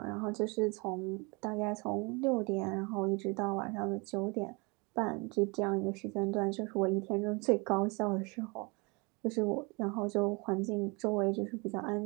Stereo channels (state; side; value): quieter; left; 29.1 dB